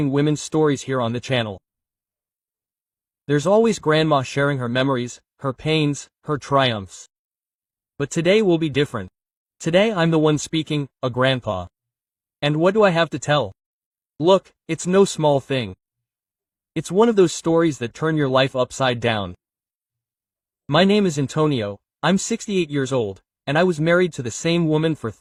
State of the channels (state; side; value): identical; both; correlation 1.00